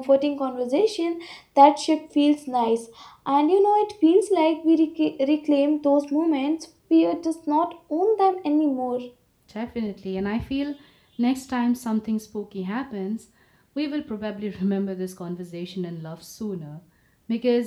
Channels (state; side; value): identical; both; correlation 1.00